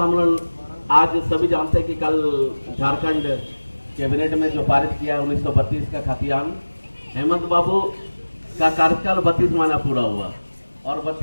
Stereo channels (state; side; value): inverted; both; correlation -1.00